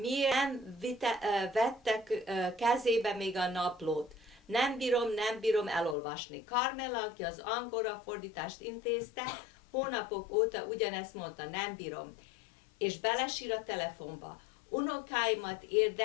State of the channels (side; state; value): right; drops out; at 6.0 s